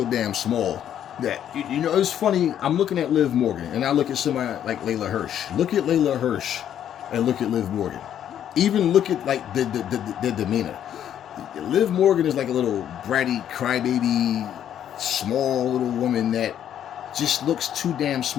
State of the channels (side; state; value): right; quieter; 10.1 dB